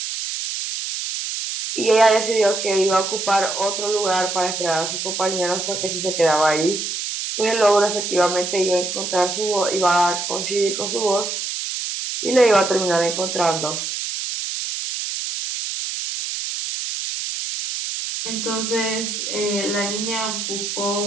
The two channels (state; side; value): noise; right; hiss, 4 dB below the sound